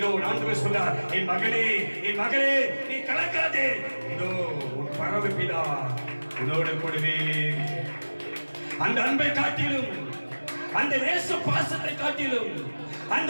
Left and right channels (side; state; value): both; inverted; correlation -1.00